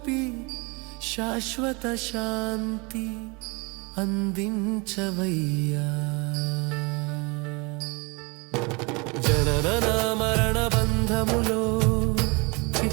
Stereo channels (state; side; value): quieter; left; 28.8 dB